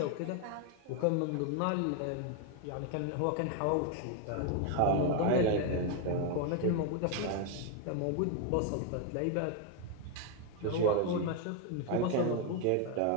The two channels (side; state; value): both; different; correlation 0.01